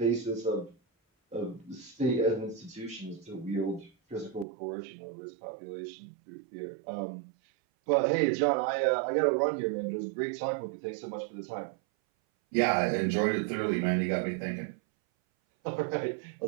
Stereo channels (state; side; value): drops out; left; at 4.5 s